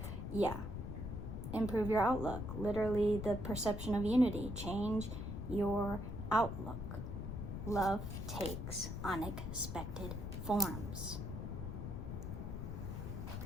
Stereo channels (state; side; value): noise; left; rumble, 5 dB below the sound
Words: Yeah. Improve your outlook. Literally the perception of unity. Change your outlook. Love takes unexpected forms.